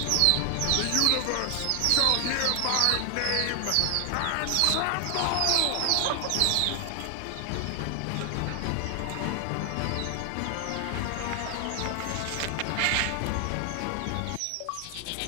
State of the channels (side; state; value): both; different; correlation 0.00